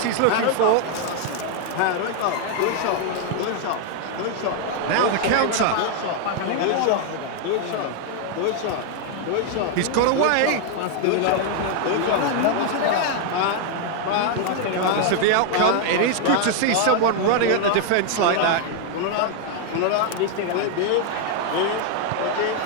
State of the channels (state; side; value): different; both; correlation 0.00